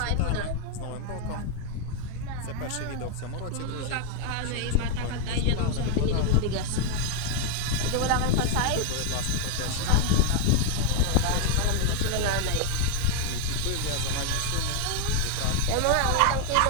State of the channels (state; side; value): different; both; correlation 0.01